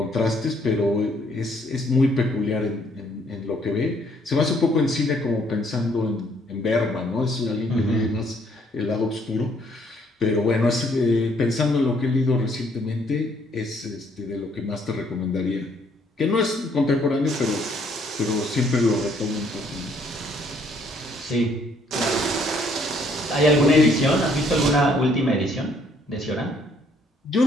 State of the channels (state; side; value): normal; both; correlation 0.66